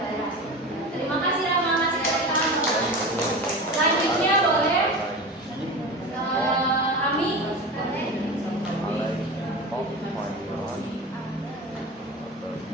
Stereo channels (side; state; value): both; normal; correlation 0.29